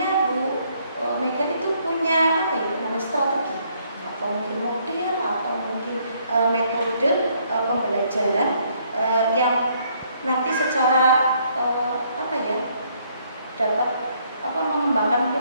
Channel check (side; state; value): both; inverted; correlation -0.68